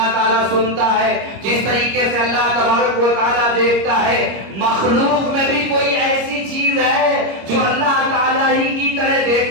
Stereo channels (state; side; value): late; left; 26 ms